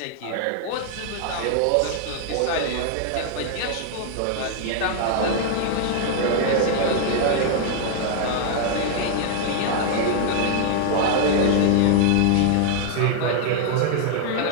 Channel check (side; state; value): both; different; correlation -0.01